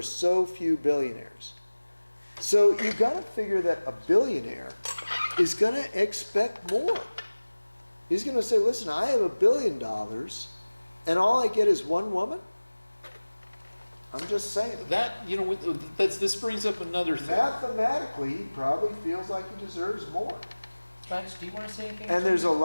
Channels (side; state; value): both; inverted; correlation -1.00